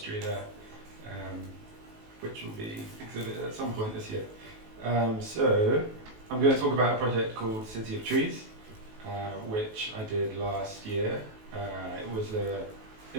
there, which will be exhibited at some point this year. So I'm going to talk about a project called City of Trees, which I did last year. It was an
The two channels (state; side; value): late; left; 19 ms